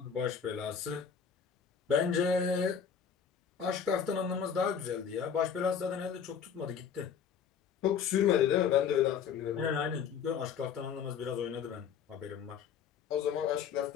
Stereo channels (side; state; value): right; quieter; 7.3 dB